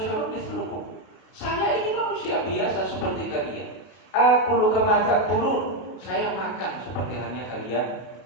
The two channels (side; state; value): right; late; 32 ms